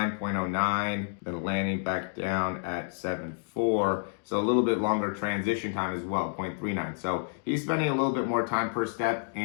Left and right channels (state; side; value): silent; right; digital silence